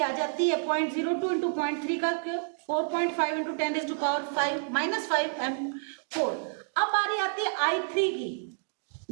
जाती है 0.02 इंटू 0.3 का 4.5 इंटू 10⁻⁻⁻5 m4। अब बारी आती है I3 की,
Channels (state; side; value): silent; left; digital silence